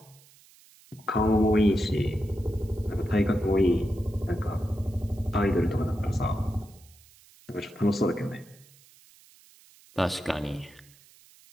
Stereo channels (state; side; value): noise; right; hiss, 26 dB below the sound